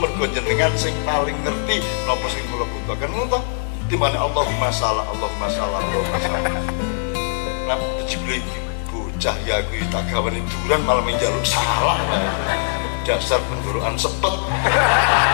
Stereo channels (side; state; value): right; silent; digital silence